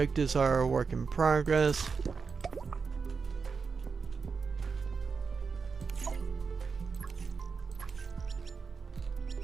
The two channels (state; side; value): quieter; left; 5.2 dB